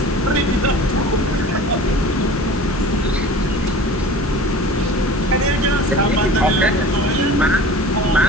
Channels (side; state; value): both; normal; correlation 0.40